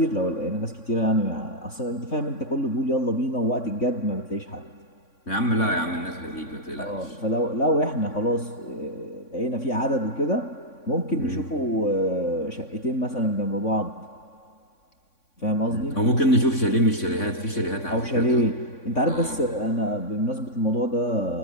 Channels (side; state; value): right; late; 3.6 ms